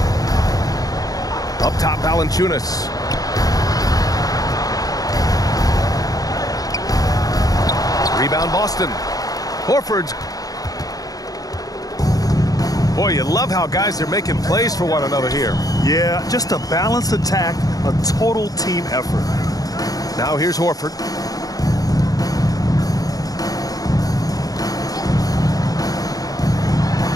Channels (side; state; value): right; late; 0.18 ms